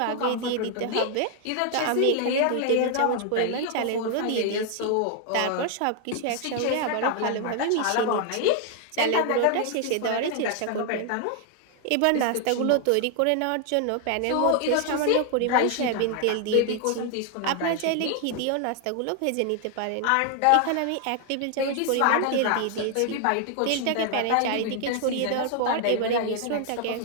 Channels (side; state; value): both; different; correlation 0.00